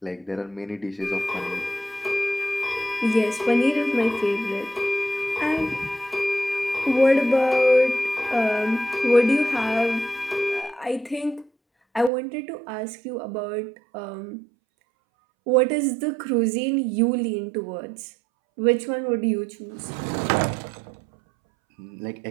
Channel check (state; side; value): drops out; left; at 12.1 s